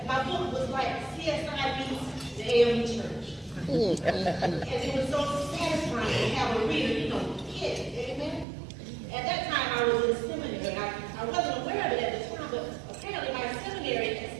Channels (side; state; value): left; drops out; at 8.5 s